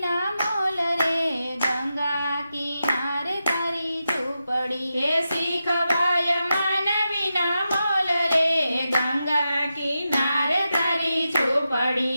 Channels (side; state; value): both; inverted; correlation -0.89